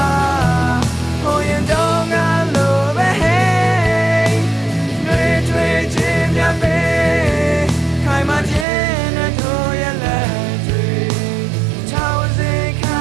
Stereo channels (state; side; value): drops out; left; at 8.7 s